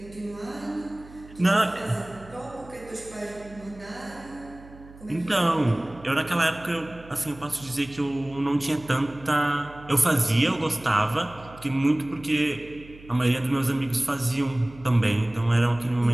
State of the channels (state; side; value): noise; right; hum, 20 dB below the sound